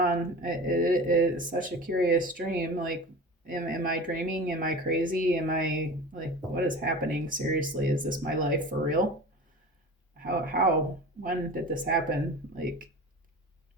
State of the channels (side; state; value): both; normal; correlation 0.34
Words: It is such a curious dream. Like, am I dreaming? Am I crazy? Am I, like, what is happening? Seriously, is this my life for real? When did this happen? Like,